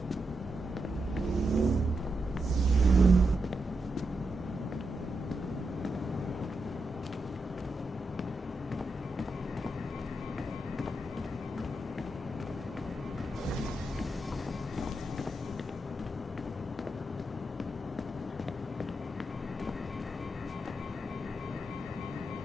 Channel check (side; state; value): both; normal; correlation 0.85